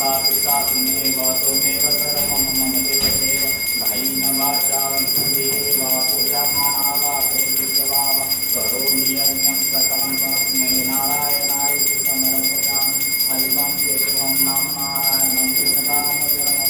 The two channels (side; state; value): both; identical; correlation 1.00